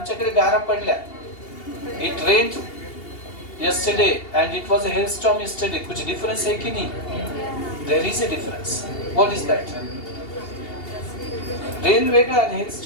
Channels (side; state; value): right; late; 2.8 ms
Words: गारा पडल्या. It rained yesterday and it was a hailstorm yesterday. कुछ डिफरेंस है कि नहीं? There is a difference. What is that? Rain वेगळा आणि